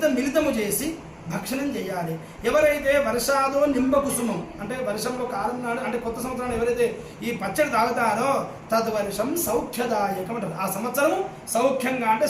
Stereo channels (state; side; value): identical; both; correlation 1.00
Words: మిళితము చేసి భక్షణం చేయాలి. ఎవరైతే వర్షాదో నింబ కుసుమం అంటే వర్షంలో కాలం నాడు అంటే కొత్త సంవత్సరాలు ఎవరైతే ఈ పచ్చడి తాగుతారో తద్వర్షం సౌఖ్యదాయకం అంటారు. ఆ సంవత్సరం సౌఖ్యంగా అంటే